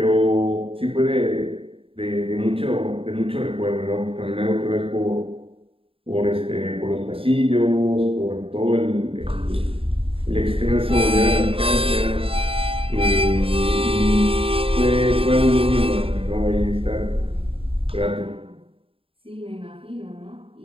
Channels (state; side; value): late; left; 0.27 ms